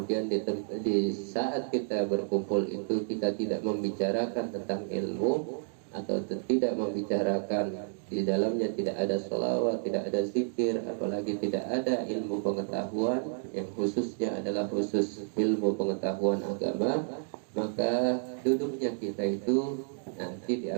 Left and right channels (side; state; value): left; silent; digital silence